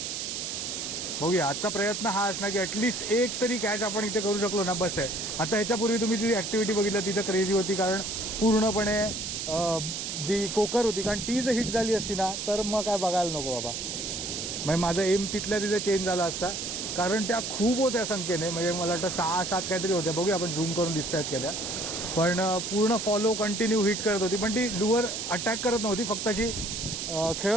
बघूया, आजचा प्रयत्न हा असणार की ॲटलिस्ट एक तरी कॅच आपण इथे करू शकलो ना, बस आहे. आता ह्याच्यापूर्वी तुम्ही ती ॲक्टिव्हिटी बघितलं, तिथं क्रेझी होती, कारण पूर्णपणे जी कोकर होती, कारण ती जर हिट झाली असती ना तर मग काय बघायला नको बाबा. म्हणजे माझं एम तिथल्या तिथे चेंज झाला असता, कारण त्या खूप होत्या संख्येने. म्हणजे मला वाटतं 6-7 काहीतरी होत्या. बघूया आपण झूम करून दिसत आहेत का त्या. पण पूर्ण फॉलो कंटिन्यू हिट करत होती, पण ती लुअर अटॅक करत नव्हती, फक्त अशी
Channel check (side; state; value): right; noise; hiss, 4 dB below the sound